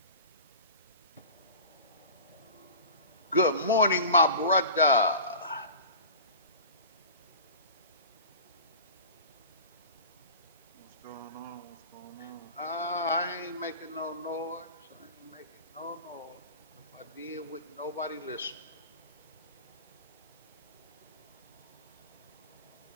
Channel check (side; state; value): both; inverted; correlation -0.36